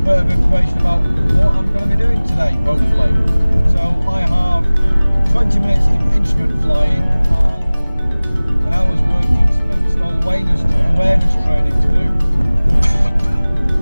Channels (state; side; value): inverted; both; correlation -1.00